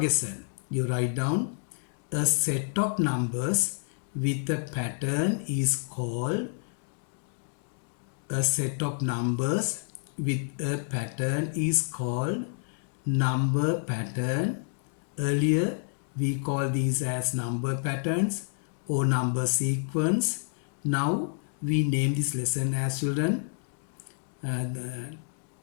You write down a set of numbers with a pattern is called number pattern. Earlier we call these as number patterns or number sequence. Now we name this lesson as children the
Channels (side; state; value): right; silent; digital silence